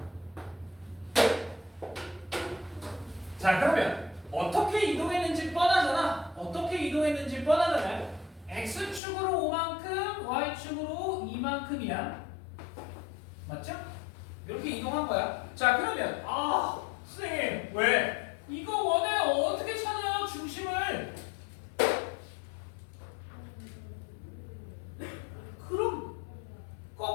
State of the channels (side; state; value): right; drops out; at 9.0 s